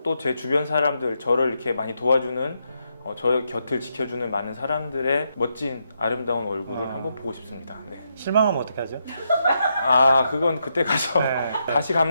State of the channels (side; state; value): both; inverted; correlation -0.81